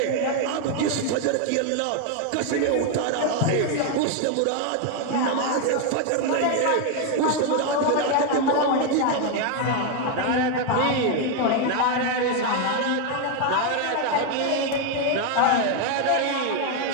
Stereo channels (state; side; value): different; both; correlation 0.01